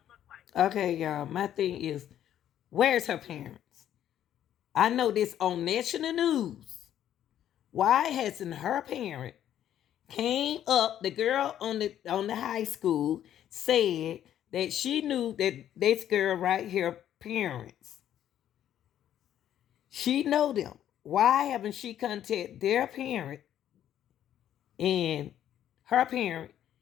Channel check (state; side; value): quieter; right; 10.9 dB